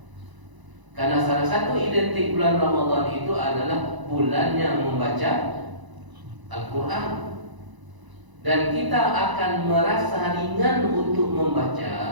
Karena salah satu identik bulan Ramadan itu adalah bulan yang membaca Al-Quran. Dan kita akan merasa ringan untuk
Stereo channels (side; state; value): left; late; 1.0 ms